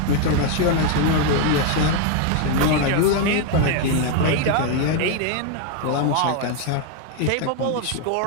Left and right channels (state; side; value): different; both; correlation 0.01